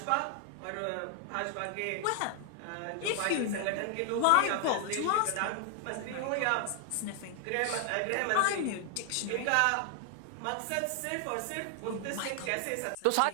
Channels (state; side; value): different; both; correlation 0.00